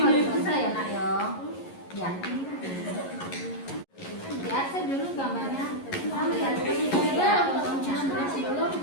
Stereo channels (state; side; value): late; right; 11 ms